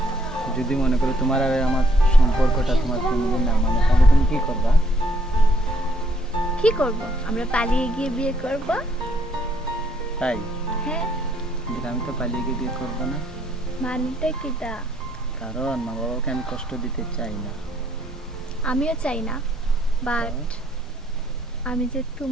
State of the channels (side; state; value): both; normal; correlation 0.69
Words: যদি মনে করো তোমার আর আমার সম্পর্কটা তোমার ফ্যামিলির না মানে, তাহলে তুমি কি করবা? কি করব? আমরা পালিয়ে গিয়ে বিয়ে করব। তাই? হ্যাঁ। কিন্তু আমি তো পালিয়ে গিয়ে বিয়ে করবো না। মানেটা কিটা? কারণ মা বাবাকে আমি কষ্ট দিতে চাই না। আমিও চাই না, বাট আমি যে